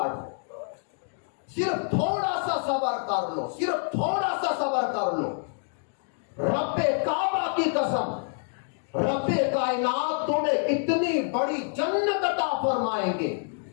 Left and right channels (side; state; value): right; silent; digital silence